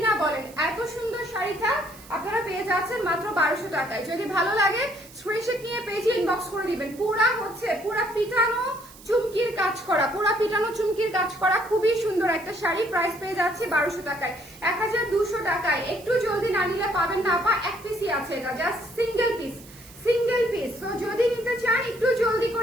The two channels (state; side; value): noise; right; hiss, 21 dB below the sound